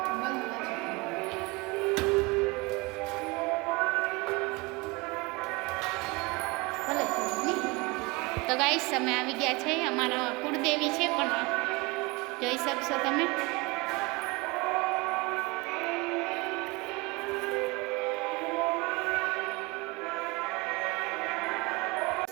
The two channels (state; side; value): quieter; left; 25.5 dB